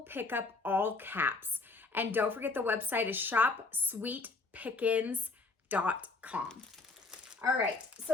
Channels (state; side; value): quieter; right; 3.7 dB